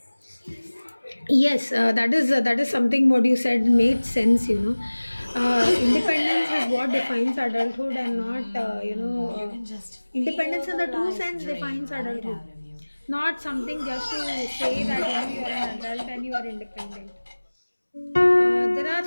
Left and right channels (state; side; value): inverted; both; correlation -1.00